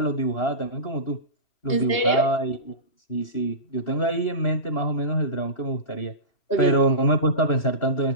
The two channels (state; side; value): late; right; 3.0 ms